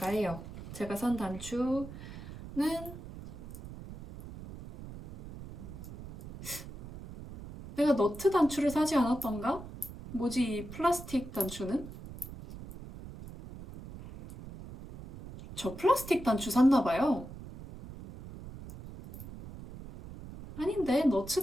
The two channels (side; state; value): right; noise; rumble, 13 dB below the sound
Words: 해요. 제가 산 단추는 내가 너트 단추를 사지 않았던가? 뭐지 이 플라스틱 단추는? 저 플라스틱 단추 샀나봐요. 아닌데 너츠